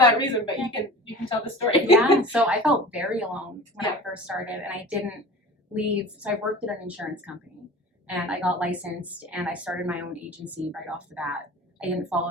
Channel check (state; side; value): normal; both; correlation 0.38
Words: reason, but you can tell the story. So I felt very alone when I first started, and I didn't leave. So I worked at an insurance company. and I got licensed and I started my own agency right off the bat. I didn't